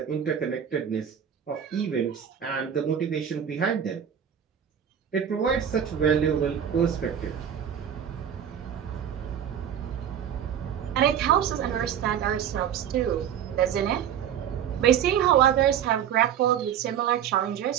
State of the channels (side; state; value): left; quieter; 9.1 dB